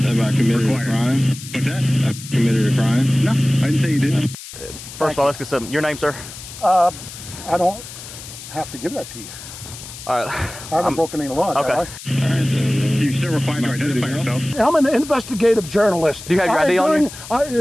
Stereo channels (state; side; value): noise; left; hiss, 14 dB below the sound